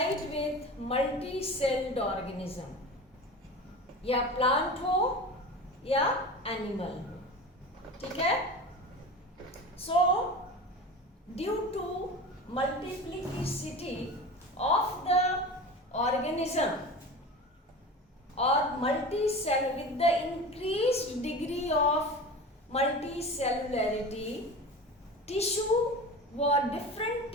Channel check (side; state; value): both; normal; correlation 0.32